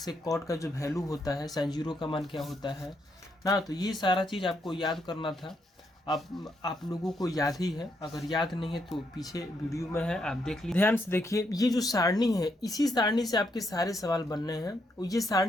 कॉट का जो वैल्यू होता है, साइन जीरो का मान क्या होता है ना, तो ये सारा चीज़ आपको याद करना था। आप लोगों को याद ही है, अगर याद नहीं है तो पीछे वीडियो में है, आप देख लीजिए। ध्यान से देखिए, ये जो सारणी है इसी सारणी से आपके सारे सवाल बनने हैं। ये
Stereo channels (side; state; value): both; normal; correlation 0.77